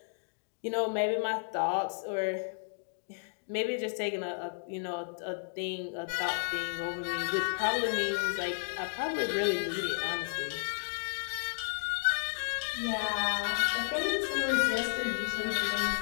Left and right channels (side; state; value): right; silent; digital silence